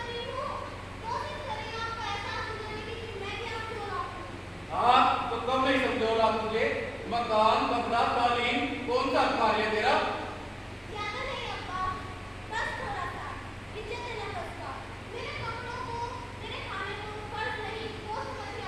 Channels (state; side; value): identical; both; correlation 1.00